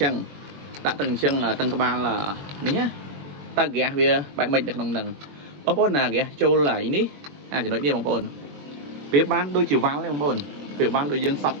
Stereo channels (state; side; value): late; left; 21 ms